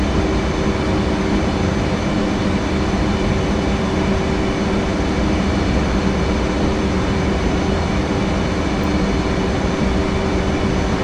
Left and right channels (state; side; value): identical; both; correlation 1.00